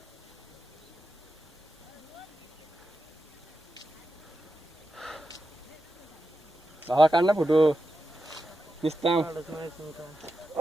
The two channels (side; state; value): both; normal; correlation 0.89